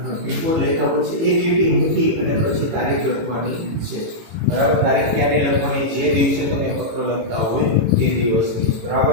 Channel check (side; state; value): left; late; 18 ms